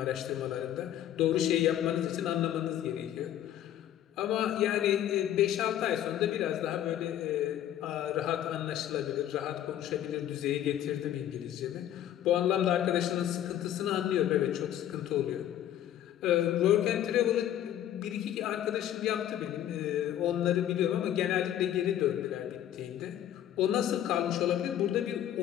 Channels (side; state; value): right; quieter; 11.4 dB